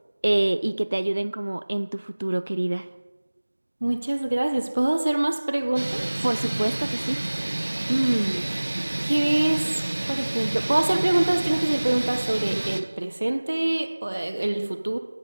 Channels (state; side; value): inverted; both; correlation -1.00